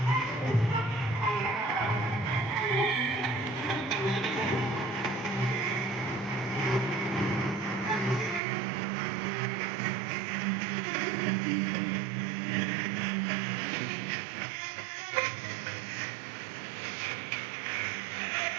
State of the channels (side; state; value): left; drops out; at 8.4 s